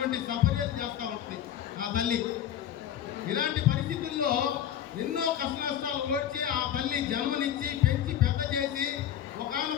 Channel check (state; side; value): quieter; right; 10.4 dB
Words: సపర్యలు చేస్తూ ఉంటుంది ఆ తల్లి. ఇలాంటి పరిస్థితుల్లో ఎన్నో కష్ట నష్టాలు ఓడ్చి ఆ తల్లి జన్మనిచ్చి పెంచి పెద్ద చేసి